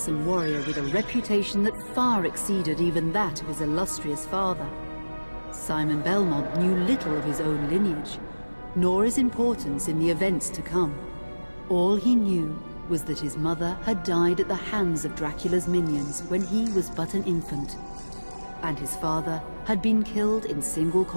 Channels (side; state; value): both; inverted; correlation -1.00